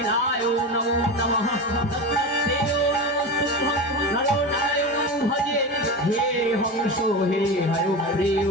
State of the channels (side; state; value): both; normal; correlation 0.23